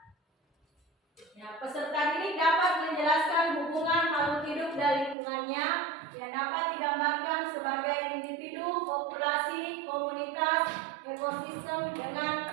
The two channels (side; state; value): left; drops out; at 5.2 s